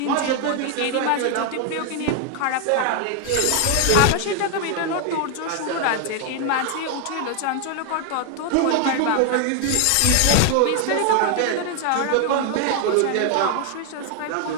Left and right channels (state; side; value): different; both; correlation 0.01